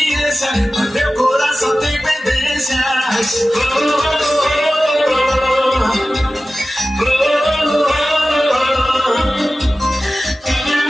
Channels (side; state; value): both; normal; correlation 0.96